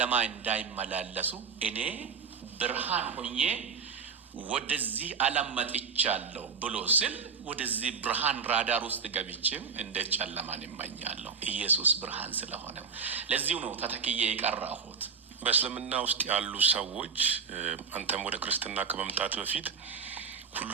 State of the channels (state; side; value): quieter; left; 5.5 dB